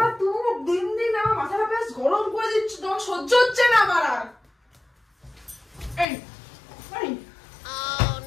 তুমি দিন দিন আমার মাথাটা বেশ গরম করে দিচ্ছ, তোমার সহ্য হচ্ছে না আমার আর। এই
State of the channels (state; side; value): drops out; right; at 6.1 s